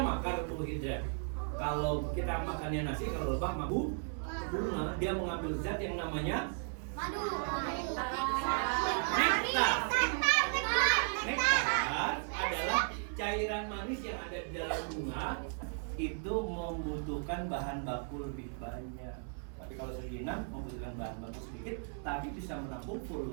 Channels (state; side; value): silent; left; 54 dB below the other